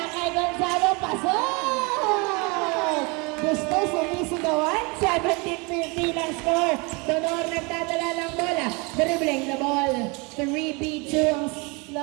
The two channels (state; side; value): quieter; left; 29.1 dB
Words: kay Gonzalo, pasok! Gusto sumisigawan, 17-15 ang score. Donor nagdadala ng bola, dribbling the ball. 3-B2 ang